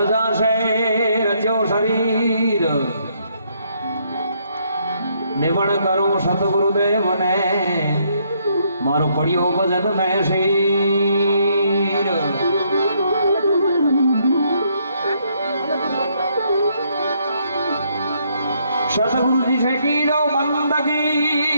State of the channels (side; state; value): both; inverted; correlation -0.71